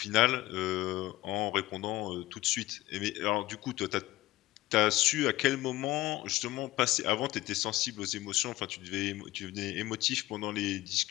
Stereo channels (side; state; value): right; quieter; 17.5 dB